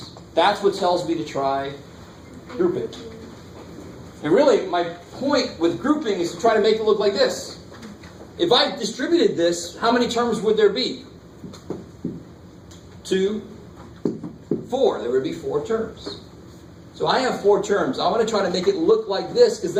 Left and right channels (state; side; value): identical; both; correlation 1.00